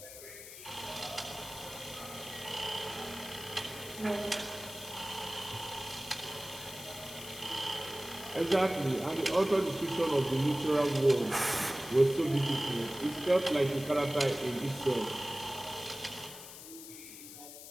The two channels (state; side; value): noise; left; hiss, 13 dB below the sound